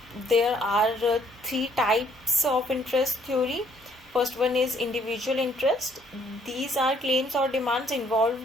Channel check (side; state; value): both; normal; correlation 0.64